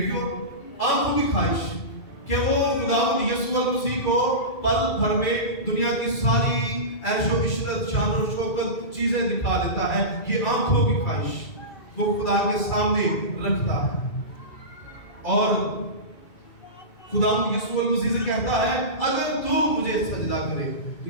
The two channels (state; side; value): late; right; 2.2 ms